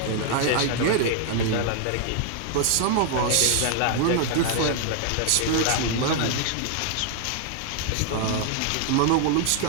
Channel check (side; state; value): both; different; correlation 0.00